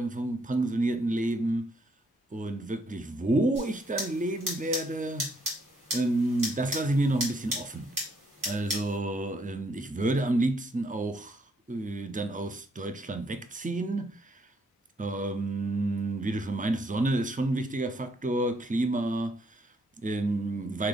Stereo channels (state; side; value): normal; both; correlation 0.71